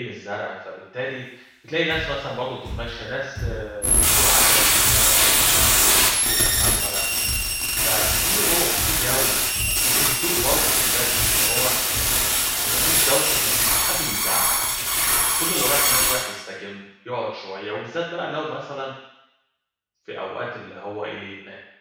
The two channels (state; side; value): identical; both; correlation 1.00